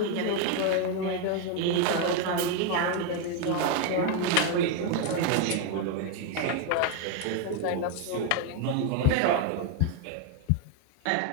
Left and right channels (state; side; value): different; both; correlation 0.02